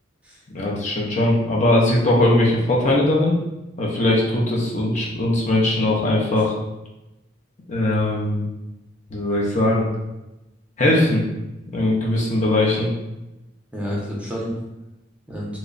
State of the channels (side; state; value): both; normal; correlation 0.59